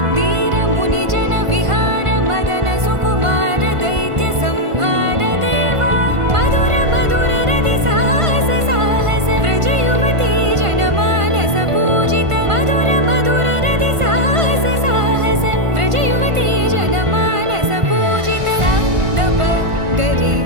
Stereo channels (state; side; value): late; left; 1.5 ms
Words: वीर मुनि जन विहार मदन सुकुमार दैत्य संहार देवा मधुर मधुर रति साहस साहस व्रज युवती जनमानस पूजित मधुर मधुर रति साहस साहस व्रज युवती जनमानस पूजित दप गरि